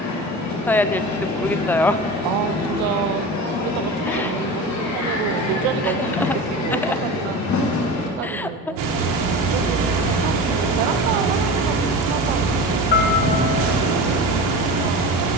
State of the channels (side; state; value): both; normal; correlation 0.30